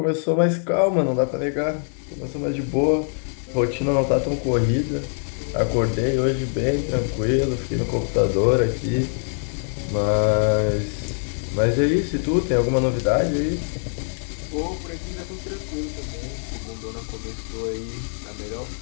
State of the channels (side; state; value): right; silent; 63 dB below the other